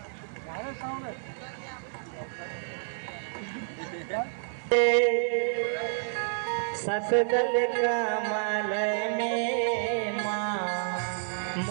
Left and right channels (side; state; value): left; silent; 58 dB below the other